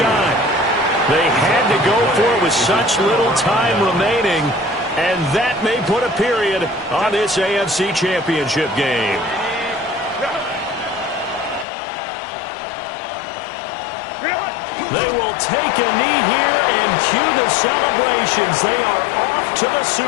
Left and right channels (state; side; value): drops out; right; at 11.7 s